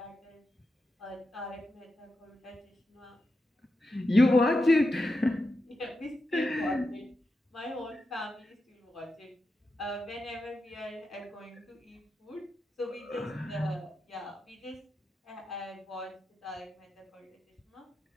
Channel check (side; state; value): both; normal; correlation 0.88